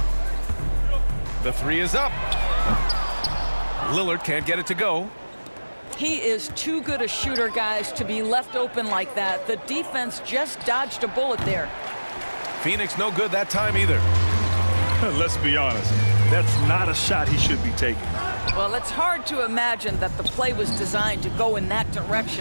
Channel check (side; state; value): both; inverted; correlation -1.00